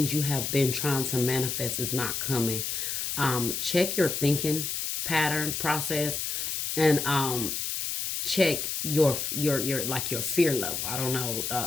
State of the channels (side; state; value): left; noise; hiss, 2 dB below the sound